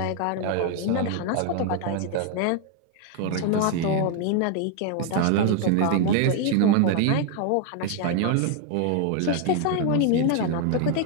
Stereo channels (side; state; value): both; different; correlation 0.01